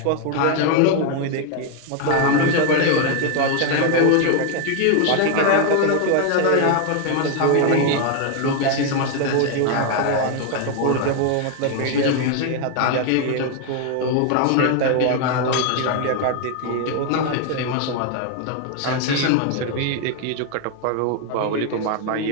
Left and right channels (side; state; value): both; different; correlation 0.01